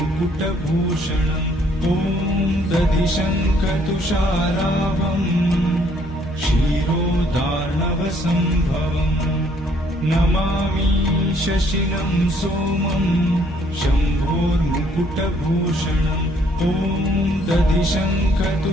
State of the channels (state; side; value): normal; both; correlation 0.65